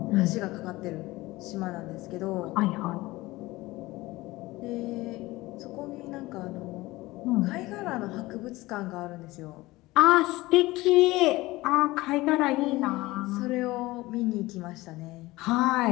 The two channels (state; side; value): quieter; right; 19.7 dB